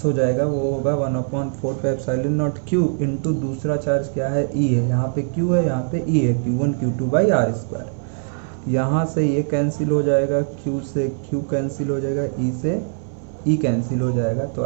हो जाएगा, वो होगा 1/4πε0 Q इंटू दूसरा चार्ज क्या है, E है, यहाँ पे Q है, यहाँ पे E है, Q1 Q2 by R square. यहाँ से ये कैंसिल हो जाएगा, Q से Q कैंसिल हो जाएगा, E से E कैंसिल हो जाएगा, तो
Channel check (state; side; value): silent; left; digital silence